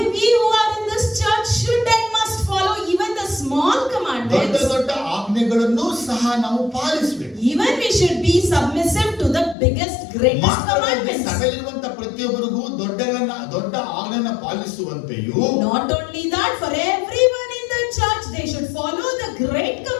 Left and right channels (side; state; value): right; drops out; at 9.6 s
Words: we who are in this church should and must follow even the small ದೊಡ್ಡ commandments. ದೊಡ್ಡ ಆಜ್ಞೆಗಳನ್ನು ಸಹ ನಾವು ಪಾಲಿಸಬೇಕು. Even we should be submissive to the biggest, greatest commandments. ಸಭೆಯಲ್ಲಿರುವಂತ ಪ್ರತಿಯೊಬ್ಬರಿಗೂ ದೊಡ್ಡ ಆಜ್ಞೆಯನ್ನು ಪಾಲಿಸುವಂತೆಯೂ, Not only that, for everyone in the church, they should follow the great